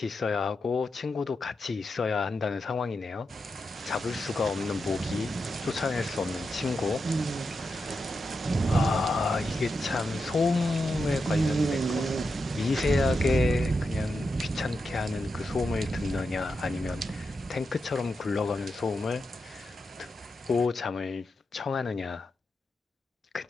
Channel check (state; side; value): normal; both; correlation 0.87